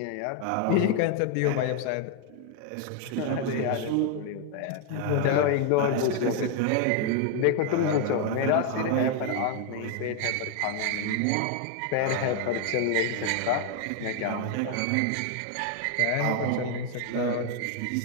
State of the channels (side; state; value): both; different; correlation 0.01